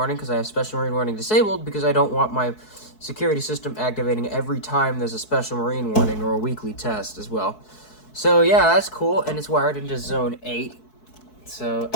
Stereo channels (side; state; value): right; late; 4.6 ms